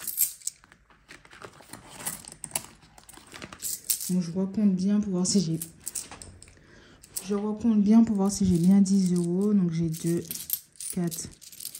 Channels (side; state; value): both; identical; correlation 1.00